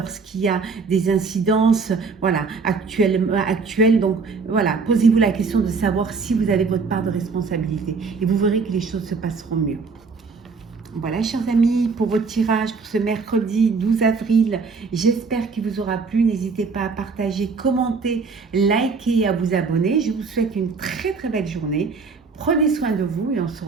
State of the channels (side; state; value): left; quieter; 4.7 dB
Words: y a des incidences, voilà, actuelles. Donc, voilà, posez-vous la question de savoir si vous avez votre part de responsabilité. Et vous verrez que les choses se passeront mieux. Voilà, chers amis, pour votre tirage pour ce mercredi 12 avril, j'espère qu'il vous aura plu. N'hésitez pas à partager, commenter, liker et à vous abonner. Je vous souhaite une très très belle journée. Prenez soin de vous et on se